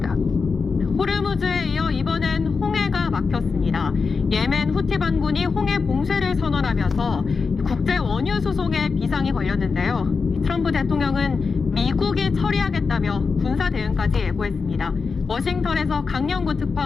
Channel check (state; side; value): quieter; right; 4.9 dB